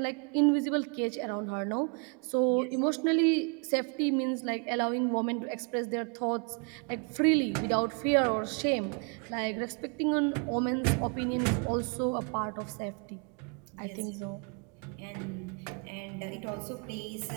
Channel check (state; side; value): quieter; left; 38.0 dB